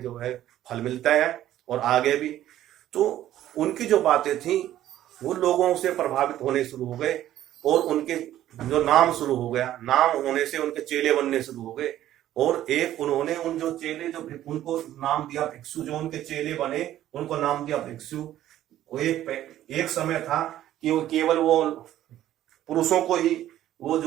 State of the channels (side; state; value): left; quieter; 12.8 dB